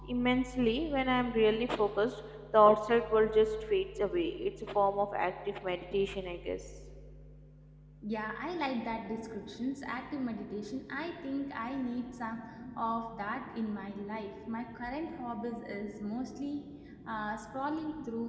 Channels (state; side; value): identical; both; correlation 1.00